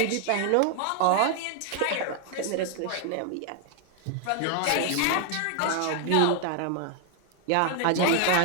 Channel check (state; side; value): different; both; correlation 0.00